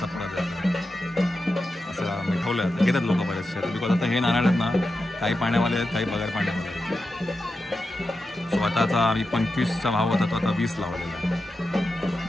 पुडा द्यायचा. असं आम्ही ठेवलं. घेतात लोक बरेचसे बिकॉज आता हे नारळ आहेत ना काही पाण्यावाले आहेत काही बगर पाण्यावाले आहेत. स्वतःचा आम्ही 25चा भाव होता तो आता 20 लावलेला आहे.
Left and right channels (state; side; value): normal; both; correlation 0.90